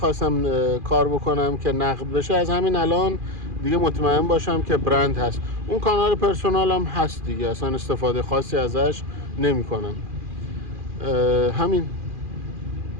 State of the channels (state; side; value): late; left; 2.4 ms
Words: کار بکنم که نقد بشه، از همین الان دیگه مطمئن باشم که برند هست. اون کانال پرسونالم هست دیگه، اصلا استفاده خاصی ازش نمی کنم. همین